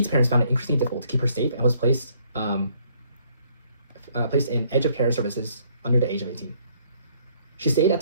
parents found it increasingly difficult to keep her safe and was placed in edge of care services under the age of 18. She stayed at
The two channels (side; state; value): both; inverted; correlation -0.65